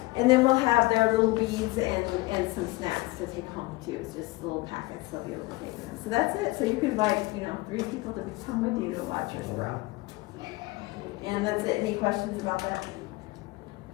and then we'll have their little beads and some snacks to take home too. It's just little packets they'll be able to take with them. So that's it. So you can invite 3 people to come with you to watch your sprout. And that's it. Any questions about that?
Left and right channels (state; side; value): quieter; right; 21.7 dB